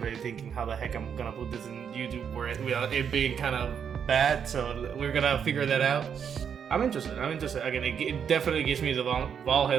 thinking how the heck I'm gonna put this in YouTube without it being kind of bad. So we're gonna figure that out. I'm interested. Again, it definitely gives me the Van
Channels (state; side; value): quieter; left; 7.6 dB